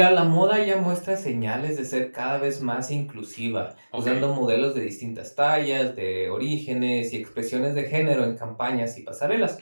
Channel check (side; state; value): both; inverted; correlation -1.00